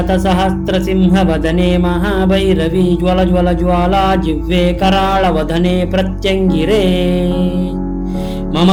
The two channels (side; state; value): both; identical; correlation 1.00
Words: महाभैरवी ज्वल ज्वल ज्वाला जिह्वे कराळवदने प्रत्यङ्गिरे मम